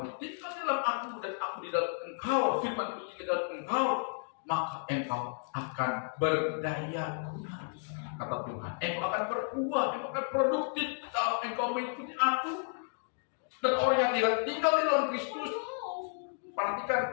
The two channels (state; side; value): silent; right; digital silence